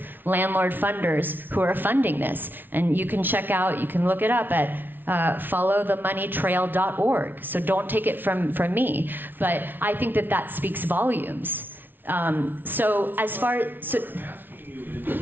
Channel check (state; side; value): late; left; 0.095 ms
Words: landlord funders who are funding this. And you can check out, you can look it up at followthemoneytrail.org. So don't take it from me. But I think that speaks volumes. So as far as... What I'm asking you is